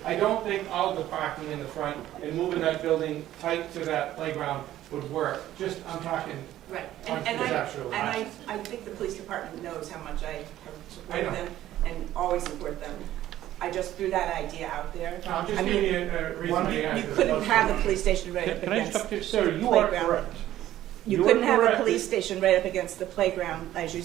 I don't think all the parking in the front and moving that building tight to that playground would work. Just, I'm talking Right, conceptually. and I think the police department knows how much I have supported them and always support them. I just threw that idea out there. I'm just giving you a reason. You couldn't have the police station right up Can I against just the talk to you? Sarah, you are playground. correct. You couldn't have a police station right up against the playground, as you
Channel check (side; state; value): left; quieter; 13.4 dB